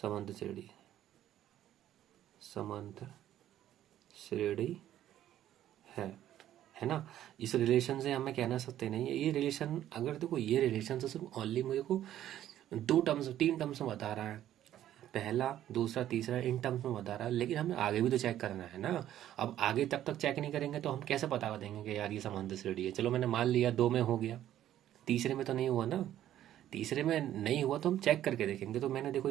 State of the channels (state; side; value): quieter; left; 12.1 dB